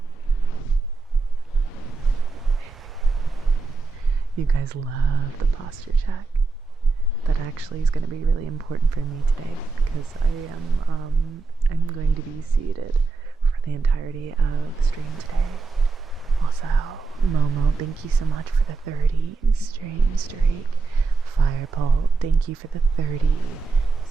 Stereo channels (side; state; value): left; quieter; 4.2 dB